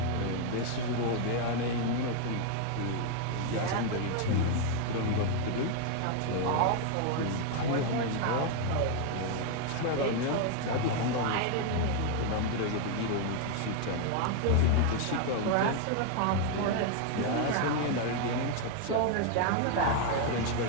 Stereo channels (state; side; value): different; both; correlation 0.00